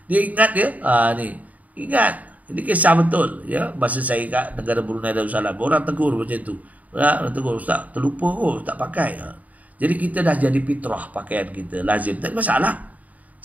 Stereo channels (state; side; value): late; left; 0.073 ms